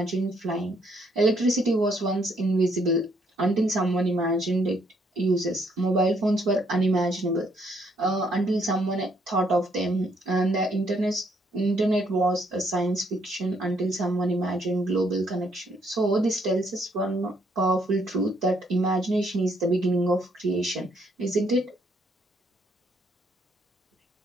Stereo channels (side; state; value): both; normal; correlation 0.70